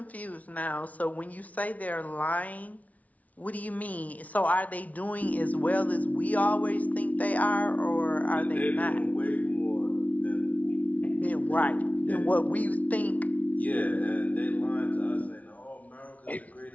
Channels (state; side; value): late; right; 0.071 ms